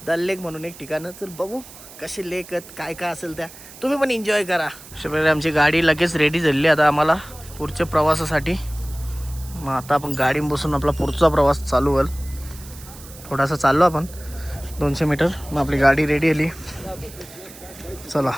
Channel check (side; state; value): right; noise; hiss, 18 dB below the sound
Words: दल लेक म्हणून एक ठिकाण. तर बघू कसे लेक आहेत, काय काय असेल त्या तुम्ही पण एन्जॉय करा. अशाप्रकारे आमची गाडी लगेच रेडी झाली आता आम्हाला पुढच्या प्रवासासाठी. मग आता आपण गाडी बसून आपला पुढचा प्रवास चालू होईल. थोडासा चाललो आपण 200 मीटर. मग आपली गाडी रेडी आली. चला